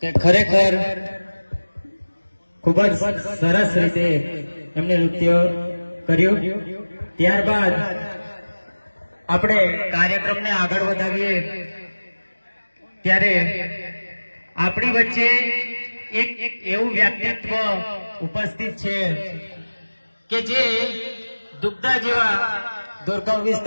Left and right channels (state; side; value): inverted; both; correlation -1.00